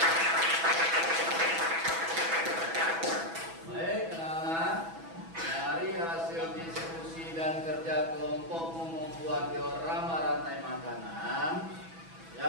Baik, anak-anak, dari hasil diskusi dan kerja kelompokmu membuat diorama rantai makanan,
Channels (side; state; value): left; late; 6.1 ms